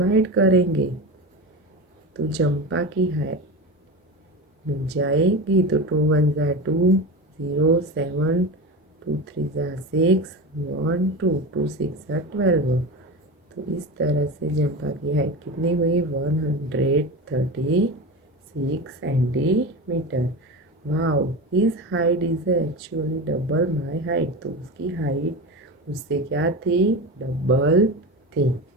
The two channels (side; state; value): both; normal; correlation 0.25